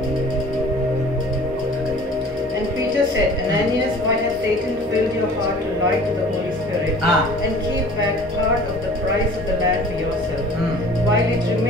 And Peter said, Ananias, why has Satan filled your heart to lie to the Holy Spirit and keep back part of the price of the land for yourself? While it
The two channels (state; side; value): normal; both; correlation 0.46